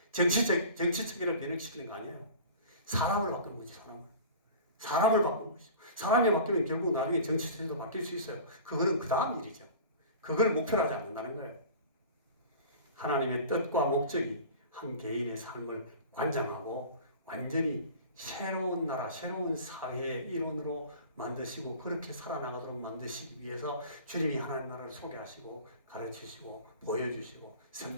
정치 체계를 변형시키는 거 아니에요. 사람을 바꾸는 거지, 사람을 바꾸는 것이죠. 사람이 바뀌면 결국 나중에 정치 체제도 바뀔 수 있어요. 그거는 그 다음 일이죠. 그걸 목표로 하지 않는다는 거예요. 하나님의 뜻과 목적이 한 개인의 삶을 관장하고 완전히 새로운 나라, 새로운 사회의 일원으로 만드시고 그렇게 살아나가도록 만드시기 위해서 주님이 하나님 나라를 소개하시고 가르치시고 보여주시고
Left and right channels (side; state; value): both; inverted; correlation -0.39